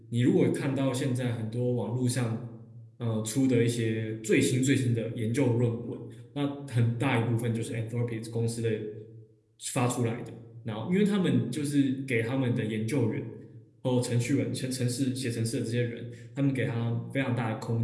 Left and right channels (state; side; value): identical; both; correlation 1.00